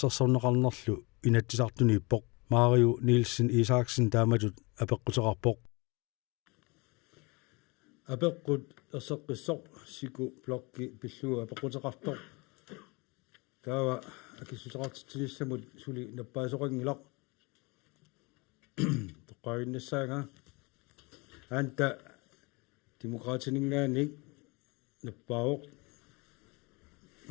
инатсисартуниппоқ Mario Nielsen Isaksen тааматут апеққутеқарпоқ апеққут ерсеққиссоқ Siku Blokki пиллуга апеққутеқартоқ таава акиссутеқартитсилиссамут сули наппаасоқангилақ тоққаиннассаага анта демократинingaanik наппаоқ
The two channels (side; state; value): right; quieter; 27.3 dB